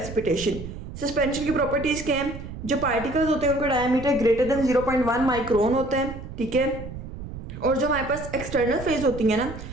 सस्पेंशन की प्रॉपर्टीज क्या हैं, जो पार्टिकल्स होते हैं उनका डायमीटर ग्रेटर देन 0.1 माइक्रोन होता है, ठीक है। और जो हमारे पास एक्सटर्नल फेज होती है ना,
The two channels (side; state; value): right; noise; rumble, 11 dB below the sound